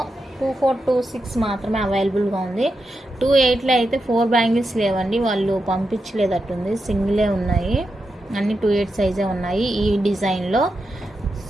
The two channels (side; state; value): both; normal; correlation 0.87